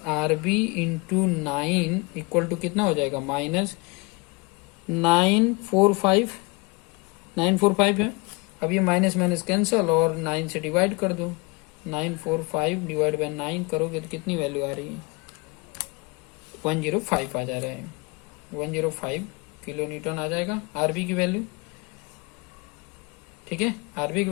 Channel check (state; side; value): quieter; right; 27.3 dB